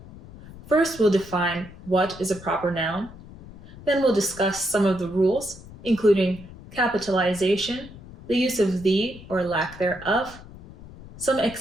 First, we'll define what is a proper noun. Then we'll discuss some of the rules, including capitalization, the use of the or lack thereof, some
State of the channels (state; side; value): noise; left; rumble, 18 dB below the sound